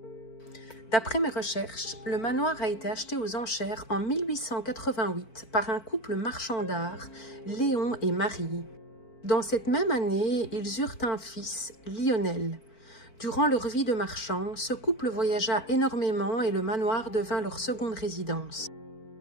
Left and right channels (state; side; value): late; right; 4.5 ms